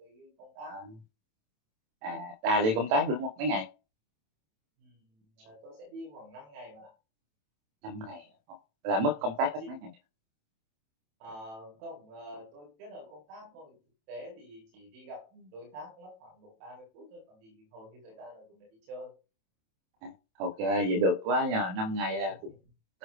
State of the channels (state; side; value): late; left; 27 ms